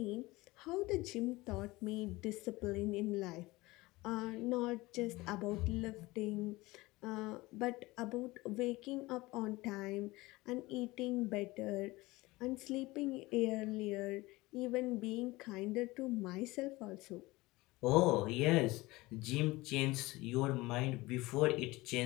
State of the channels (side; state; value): right; quieter; 20.8 dB